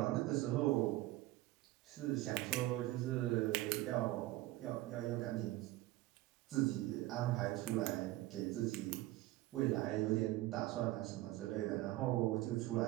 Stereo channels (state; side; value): quieter; left; 17.4 dB